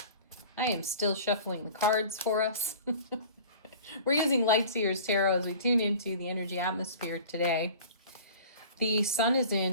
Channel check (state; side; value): inverted; both; correlation -0.42